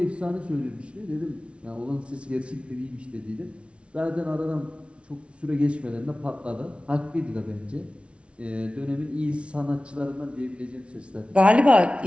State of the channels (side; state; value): left; late; 0.060 ms